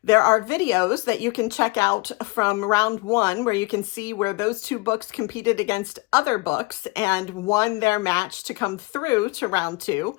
There are videos that you can check out from round 1 where you can see where those 2 books competed against other books and won their match to come through to round 2.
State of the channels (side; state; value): right; quieter; 25.1 dB